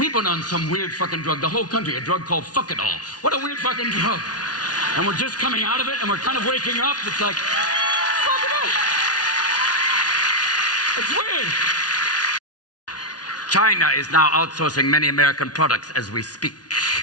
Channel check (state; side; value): late; right; 0.69 ms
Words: been on some weird fucking drug. The whole country, a drug called Fuck-It-All. What a weird fucking drug. And we're just coming out of it, and we're kind of waking up. It's like, fuck it all. It's weird. China is now outsourcing many American products as we speak.